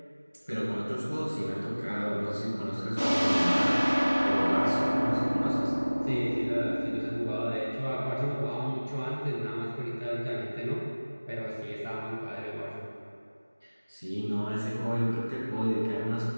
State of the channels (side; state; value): both; inverted; correlation -1.00